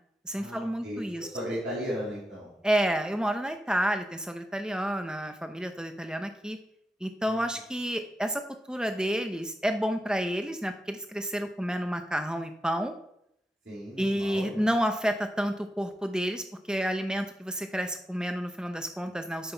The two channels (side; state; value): both; normal; correlation 0.87